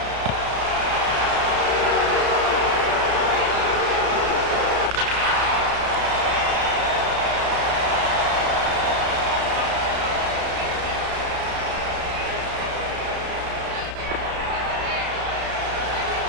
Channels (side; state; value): left; late; 33 ms